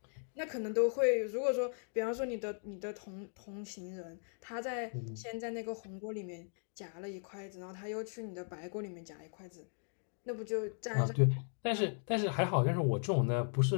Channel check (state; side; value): silent; right; 53 dB below the other